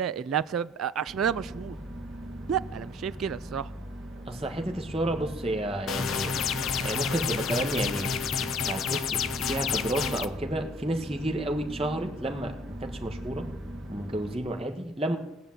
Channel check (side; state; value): both; normal; correlation 0.57